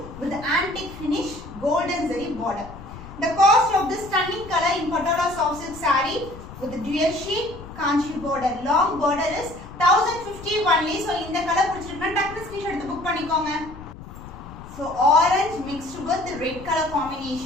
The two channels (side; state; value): left; noise; rumble, 15 dB below the sound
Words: with antique finish, golden zari border. The cost of this stunning color in Patola soft silk saree with the dual shade kanchi border, long border is 1050 only. so இந்த colour பிடிச்சிருக்குனா டக்குனு screenshot எடுத்து book பண்ணிக்கோங்க. so orange mixed with the red color